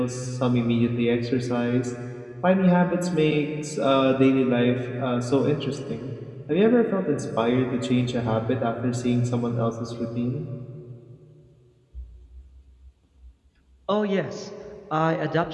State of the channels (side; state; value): both; identical; correlation 1.00